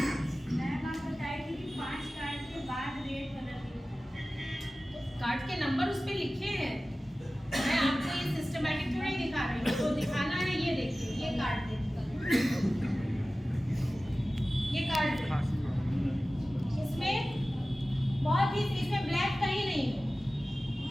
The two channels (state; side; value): normal; both; correlation 0.96